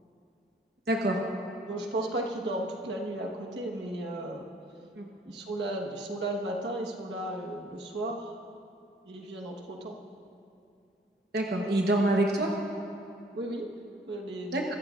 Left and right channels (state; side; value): normal; both; correlation 0.57